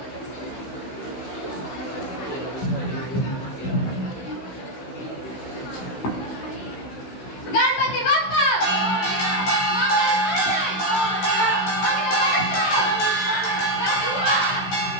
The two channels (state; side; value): late; right; 16 ms